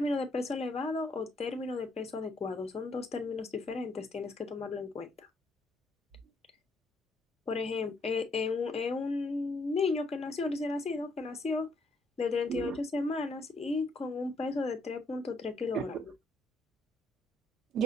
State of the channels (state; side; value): normal; both; correlation 0.70